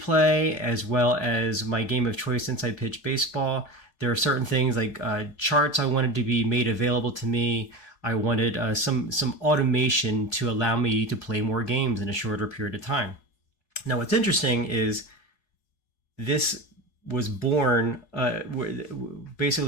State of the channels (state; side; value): late; right; 4.7 ms